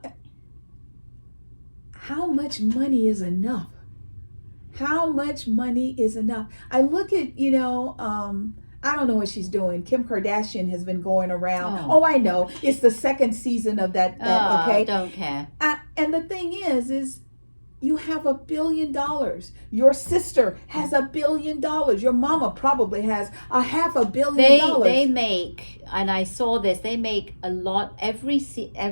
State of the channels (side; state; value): both; inverted; correlation -1.00